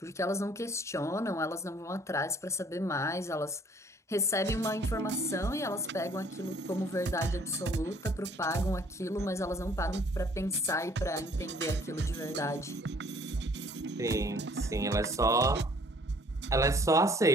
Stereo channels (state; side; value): normal; both; correlation 0.58